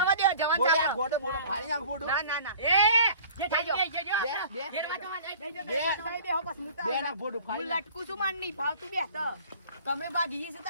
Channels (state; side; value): inverted; both; correlation -0.47